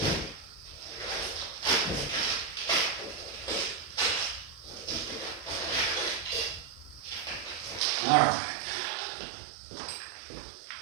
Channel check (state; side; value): drops out; left; at 7.8 s